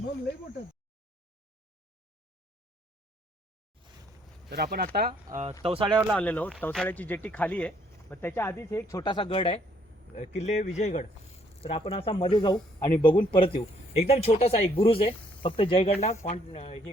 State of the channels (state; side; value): normal; both; correlation 0.67